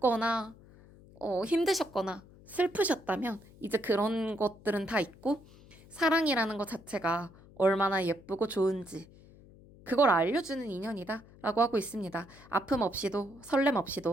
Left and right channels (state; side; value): noise; left; hum, 23 dB below the sound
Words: 힘드셨거나 슬프셨다면 이제 그런 것들은 다 있고 사랑이라는 것 자체가 얼마나 예쁘고 좋은지 그걸 알려주는 인연이다 라고 하고 있습니다. 아픔 없이도 설렘